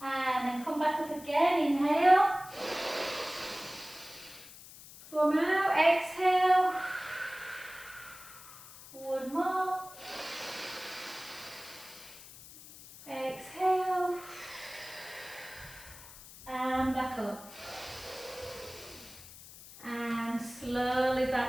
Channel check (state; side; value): noise; left; hiss, 17 dB below the sound